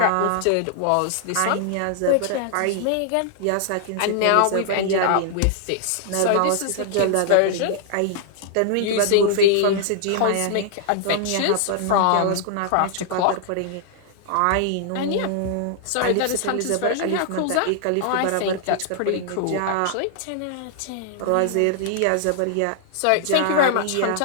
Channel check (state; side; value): different; both; correlation -0.01